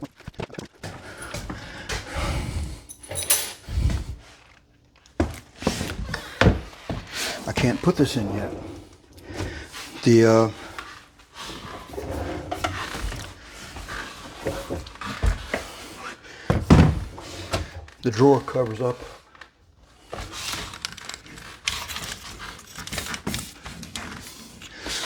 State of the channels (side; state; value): both; identical; correlation 1.00